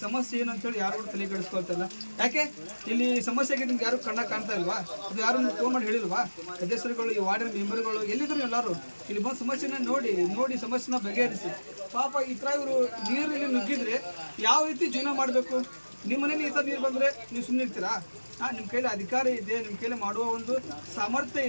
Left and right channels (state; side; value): inverted; both; correlation -1.00